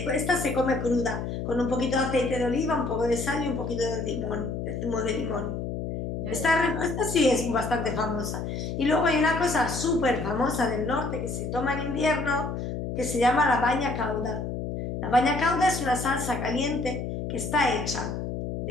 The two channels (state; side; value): noise; left; hum, 4 dB below the sound